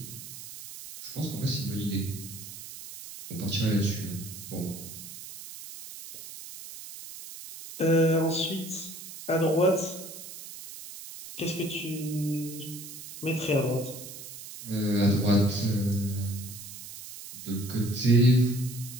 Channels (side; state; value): right; noise; hiss, 12 dB below the sound